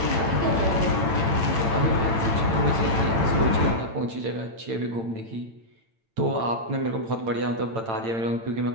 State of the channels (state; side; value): late; left; 8.9 ms